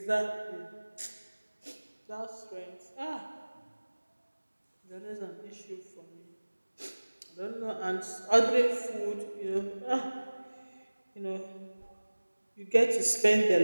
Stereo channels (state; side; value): inverted; both; correlation -1.00